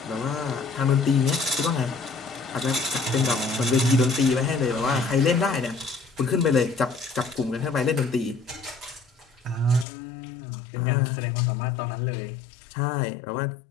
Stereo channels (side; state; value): right; drops out; at 9.9 s